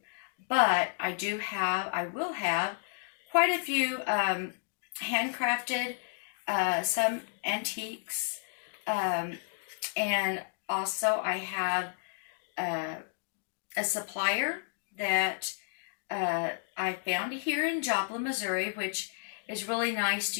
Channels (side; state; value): right; silent; digital silence